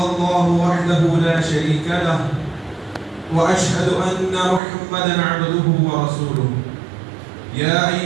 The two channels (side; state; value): left; drops out; at 4.6 s